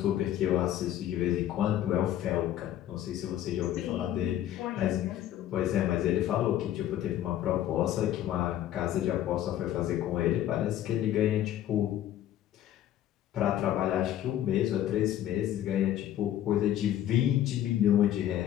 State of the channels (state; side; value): quieter; right; 12.0 dB